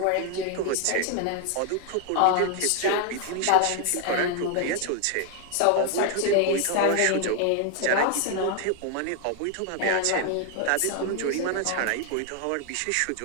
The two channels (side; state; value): both; different; correlation 0.00